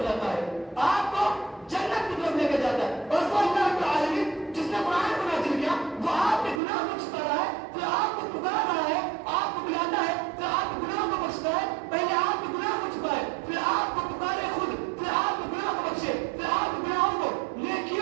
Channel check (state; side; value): drops out; left; at 6.6 s